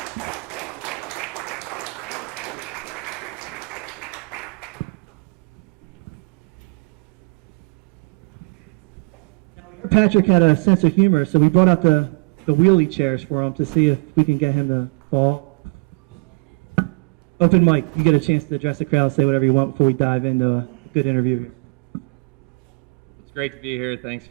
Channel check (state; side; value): quieter; left; 30.4 dB